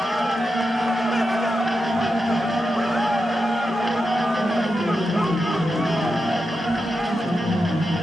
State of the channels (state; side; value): normal; both; correlation 0.88